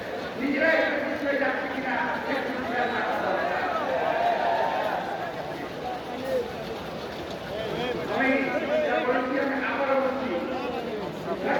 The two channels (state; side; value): identical; both; correlation 1.00